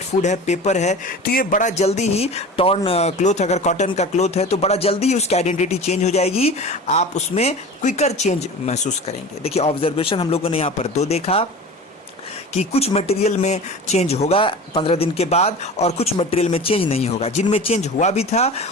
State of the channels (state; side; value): normal; both; correlation 0.35